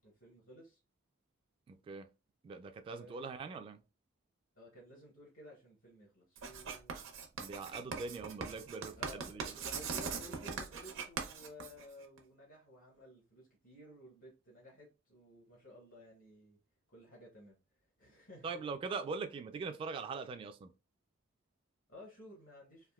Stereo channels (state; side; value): quieter; left; 4.4 dB